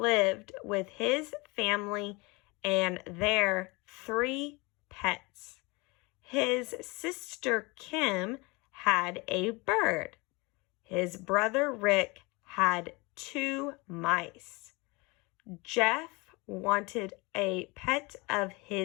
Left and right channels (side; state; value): right; quieter; 26.2 dB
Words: with his family and their 3 pets. His sister Kim had a bird. His brother Rick had 2 mice. Jeff wanted a pet of